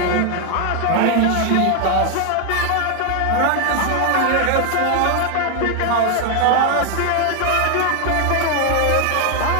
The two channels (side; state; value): both; different; correlation 0.01